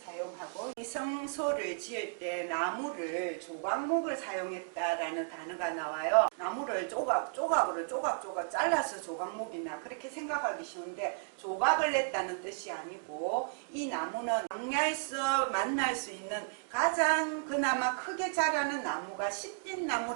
사용하고, 이 성소를 지을 때 나무를 조각목을 사용했다라는 단어가 나와요. 나무를 조각으로 잘라서 조각목이나 그렇게 생각하기 쉬운데 조각을 냈다는 뜻이 아니고, 이 나무는 광야에서 만날 수 있는 가장 그나마 크게 자라는 나무가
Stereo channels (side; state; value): left; silent; digital silence